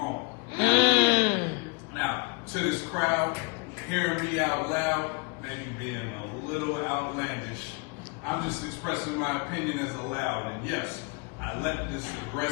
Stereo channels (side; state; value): right; quieter; 31.5 dB